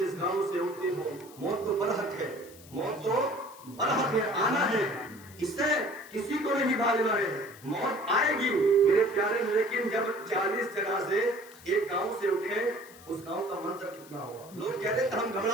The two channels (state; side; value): noise; left; hiss, 21 dB below the sound